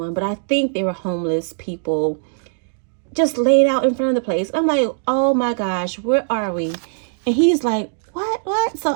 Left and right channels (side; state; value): left; silent; digital silence